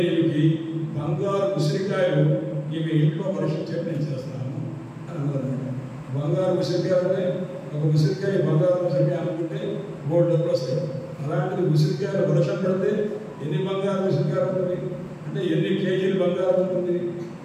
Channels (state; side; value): identical; both; correlation 1.00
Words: ఈమెకి బంగారు ఉసిరికాయలు ఈమె ఇంట్లో పరీక్షించేట్టు నేను చేస్తాను అని అన్నారన్నమాట. బంగారు ఉసిరికాయ అంటే ఒక ఉసిరికాయ బంగారు ఉసిరికాయ అనుకుంటే 3 డబ్బులు వస్తాయి. అలాంటిది ఉసిరికాయలు వర్షం పడితే ఎన్ని బంగారు ఉసిరికాయలు ఉంటుంది అంటే ఎన్ని కేజీలు బంగారం ఉంటుంది.